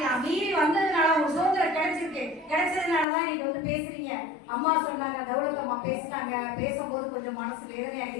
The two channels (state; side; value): drops out; right; at 3.1 s